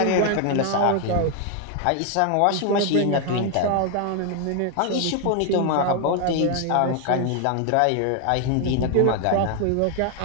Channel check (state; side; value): different; both; correlation 0.01